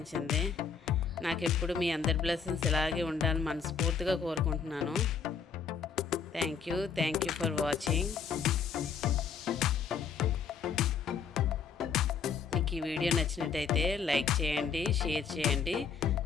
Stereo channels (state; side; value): quieter; right; 6.1 dB